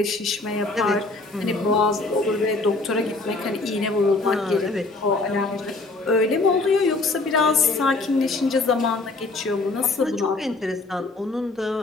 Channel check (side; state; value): right; quieter; 3.3 dB